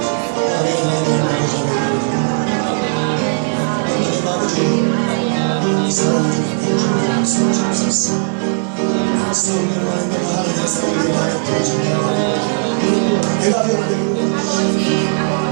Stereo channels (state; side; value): silent; left; digital silence